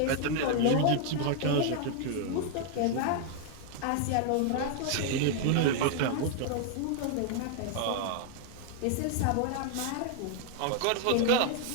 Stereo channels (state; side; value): different; both; correlation 0.00